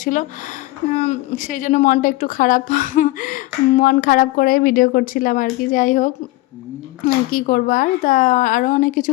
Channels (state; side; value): quieter; right; 19.2 dB